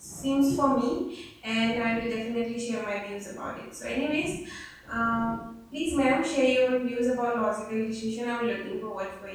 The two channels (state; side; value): identical; both; correlation 1.00